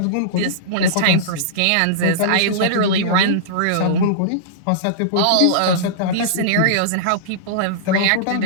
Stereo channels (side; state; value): both; different; correlation -0.03